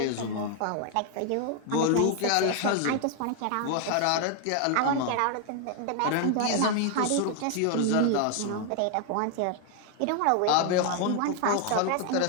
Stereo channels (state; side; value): different; both; correlation 0.00